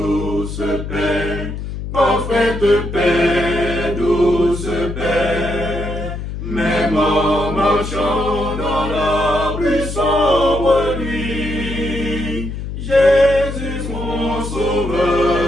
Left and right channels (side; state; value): left; noise; hum, 7 dB below the sound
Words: paix, parfaite paix, douce paix, même en marchant dans la plus sombre nuit, Jésus mon